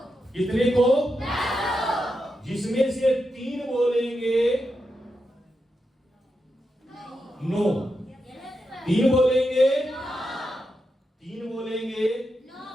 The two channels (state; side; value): normal; both; correlation 0.87